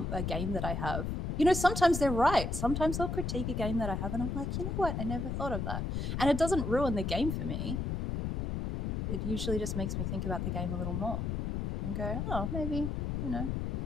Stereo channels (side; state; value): left; noise; rumble, 2 dB below the sound